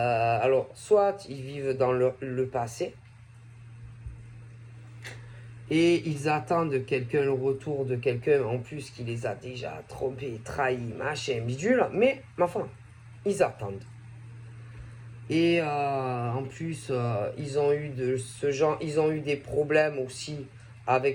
soit ils vivent dans le passé et ils attendent le retour de quelqu'un en plus qui les a déjà trompés, trahis, machin, bidule, mais ma foi, ils attendent. Et en plus, ils ont eu ils ont eu des problèmes aussi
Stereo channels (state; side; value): identical; both; correlation 1.00